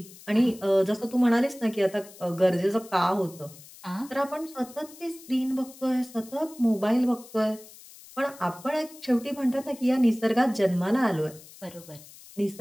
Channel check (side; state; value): left; noise; hiss, 20 dB below the sound